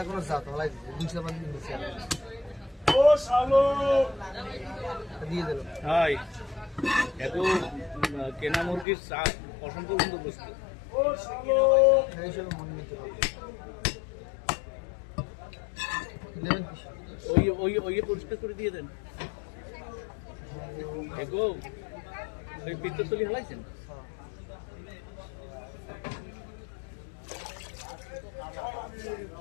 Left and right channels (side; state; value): right; drops out; at 8.8 s